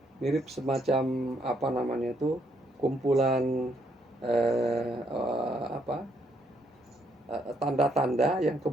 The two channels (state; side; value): normal; both; correlation 0.73